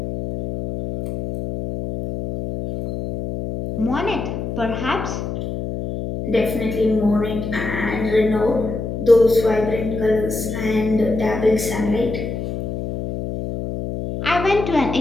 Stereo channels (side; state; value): left; noise; hum, 5 dB below the sound